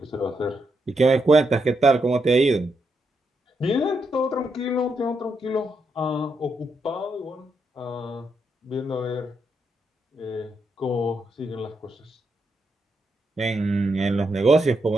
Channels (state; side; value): normal; both; correlation 0.81